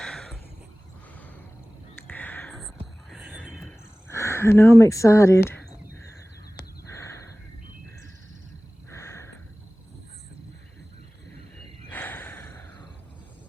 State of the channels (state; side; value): normal; both; correlation 0.98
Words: I know I'm excited.